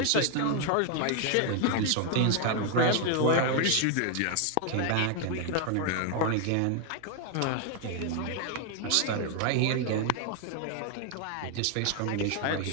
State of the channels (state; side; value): different; both; correlation 0.00